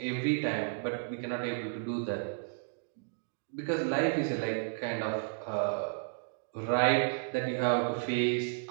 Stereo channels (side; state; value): left; silent; digital silence